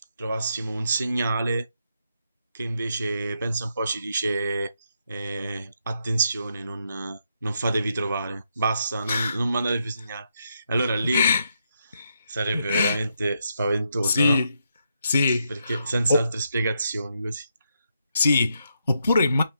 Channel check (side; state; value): both; inverted; correlation -0.80